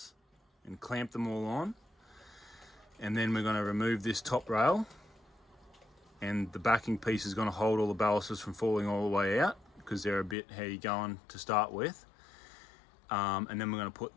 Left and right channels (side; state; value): right; drops out; at 10.4 s